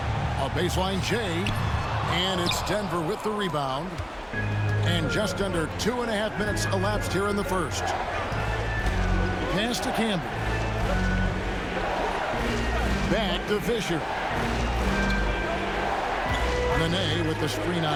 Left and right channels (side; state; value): both; identical; correlation 1.00